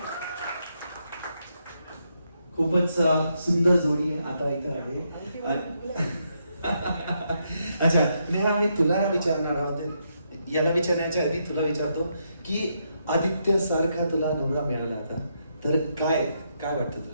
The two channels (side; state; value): both; inverted; correlation -0.79